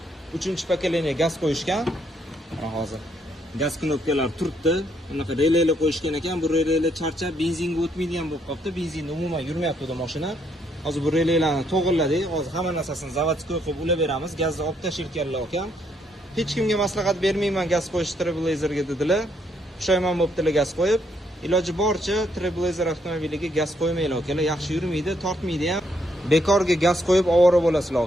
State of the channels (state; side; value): normal; both; correlation 0.72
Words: 3-pokoleniya gaz qo'yishgan. Mana hozir gaz knopkalari turibdi. Bunaqa relaylar qo'yishgan ekan. Bu relaylar charchab benzinga o'tmaydigan bo'lib qolibdi. Benzinda umuman yurmayapti bu mashina. Hozir bu relaylarni to'g'irladik. Hozir hamma narsasini zavodskoy qilib ulab beramiz. Gazni olib tashirkanlar ekan. Hech kimga maslahat bermayman gaz qo'yish Trailblazerga dedilar. Pushaymon bo'libdilar gaz qo'yib. Iloji boricha Trailblazer avtomobiliga gaz qo'ymanglar akalar. Yaxshi yurmaydi, tortmaydi ham. Bekorga gaz qo'yib ovora bo'lasizlar